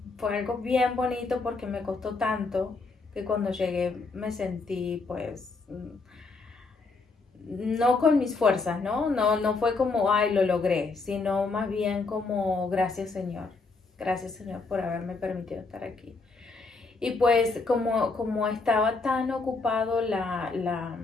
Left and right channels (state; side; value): quieter; right; 4.0 dB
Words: fue algo bien bonito, porque me costó tanto que cuando llegué me sentí pues no con mis fuerzas, no fue como ay lo logré, sino más bien como gracias Señor por haberme permitido estar aquí. Y pues como estaba tan ocupado la